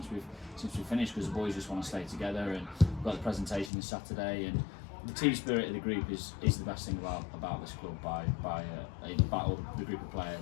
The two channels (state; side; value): drops out; right; at 3.7 s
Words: we've finished, because the boys just want to stay together, and we've got the presentation this Saturday, and the team spirit of the group is the best thing about this club by all the group of